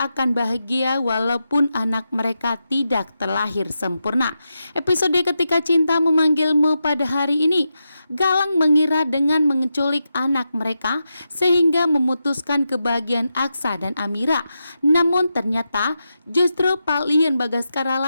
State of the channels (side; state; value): both; inverted; correlation -0.88